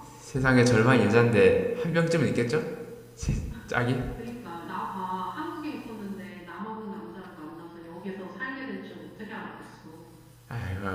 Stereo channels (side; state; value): both; identical; correlation 1.00